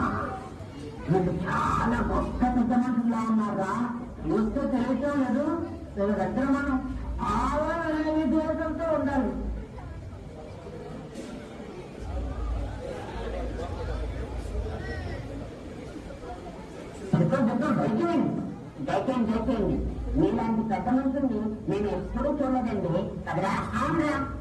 మీరు చాలా గొప్ప పెద్ద మనుషులా ఉన్నారా. చూస్తే తెలియటం లేదు. వీళ్ళ దగ్గర మనం ఆలోచన దేశంతో ఉండాలి. దయచేయండి. మీలాంటి పెద్ద మనుషుల్ని నేను ఎప్పుడూ చూడలేదండి కదరా.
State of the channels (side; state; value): both; identical; correlation 1.00